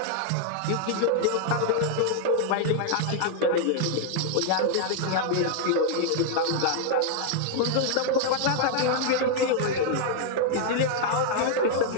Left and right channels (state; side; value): different; both; correlation -0.01